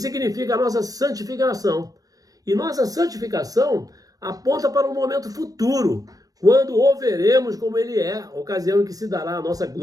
a nossa santificação. E nossa santificação aponta para um momento futuro, quando o veremos como ele é, ocasião em que se dará a nossa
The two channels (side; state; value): left; late; 0.18 ms